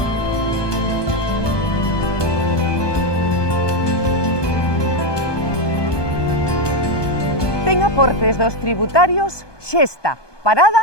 Ten aportes dos tributarios Xesta,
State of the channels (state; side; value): late; right; 1.2 ms